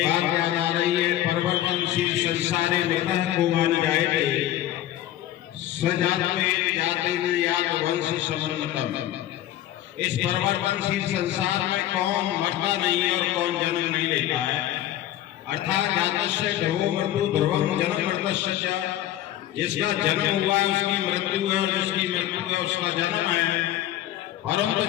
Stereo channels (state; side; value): quieter; right; 13.1 dB